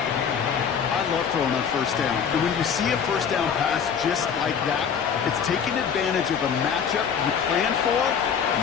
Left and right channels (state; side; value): quieter; right; 7.2 dB